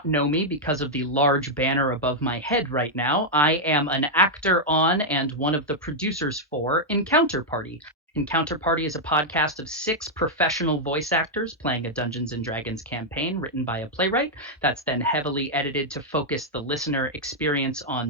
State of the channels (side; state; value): both; normal; correlation -0.03